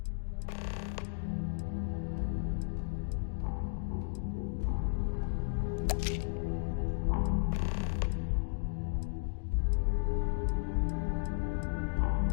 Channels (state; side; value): silent; right; digital silence